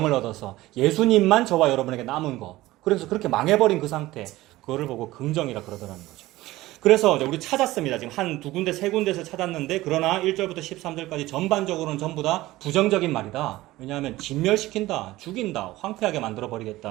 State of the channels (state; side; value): quieter; left; 17.6 dB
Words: 얻어서 예수님만 저와 여러분에게 남은 거. 그래서 그렇게 망해버린 그 상태, 그거를 보고 긍정이라 그러더라는 거죠. 그래서 우리 찾았습니다. 지금 한 두 군데, 세 군데에서 찾았는데, 그러나 1절부터 13절까지 전반적으로는 전부 다 부정적인 말이다. 왜냐하면 진멸시킨다, 죽인다, 황폐하게